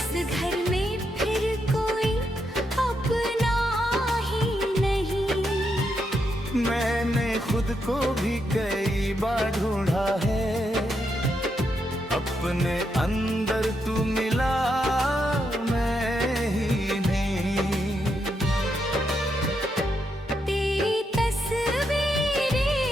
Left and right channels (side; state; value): both; normal; correlation 0.81